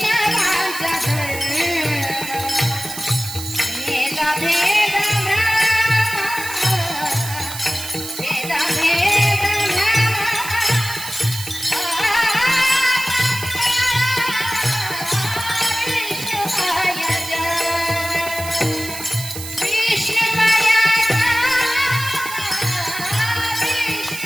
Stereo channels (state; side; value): noise; right; hiss, 9 dB below the sound